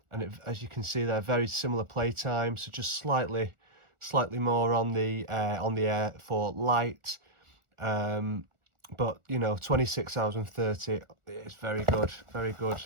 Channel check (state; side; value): late; left; 1.4 ms